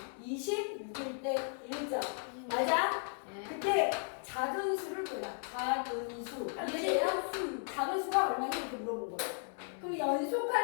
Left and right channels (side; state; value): right; silent; 54 dB below the other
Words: 26일 때 1점. 맞아? 네. 그때 작은 수를 골라. 작은 수. 이해돼요? 작은 수가 얼마인지 이렇게 물어본 거예요. 그럼